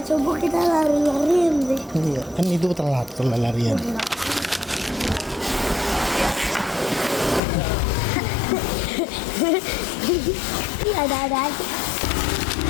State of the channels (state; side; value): drops out; right; at 7.4 s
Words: subuh kita lari-larian deh. Iya, kan itu telat kalau larian. Iya, ada aja.